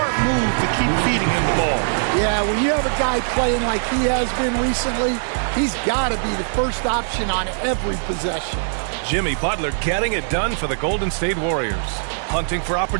move to keep feeding him the ball. Yeah, when you have a guy playing like he has been recently, he's got to be the first option on every possession. Jimmy Butler getting it done for the Golden State Warriors. Hunting for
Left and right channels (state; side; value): silent; left; digital silence